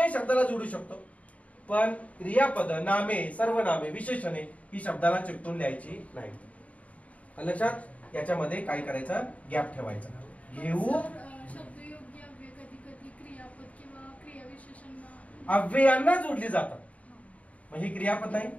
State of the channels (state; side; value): late; right; 0.068 ms